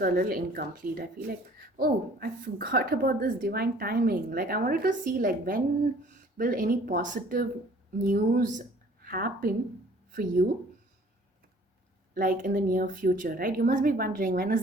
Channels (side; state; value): both; normal; correlation 0.53